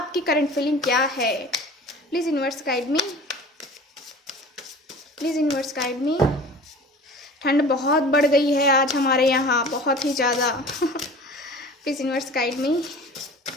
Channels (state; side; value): normal; both; correlation 0.41